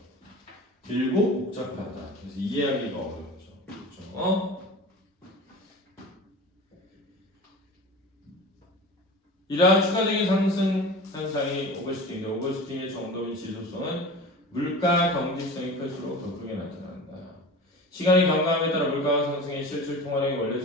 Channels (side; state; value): both; normal; correlation 0.35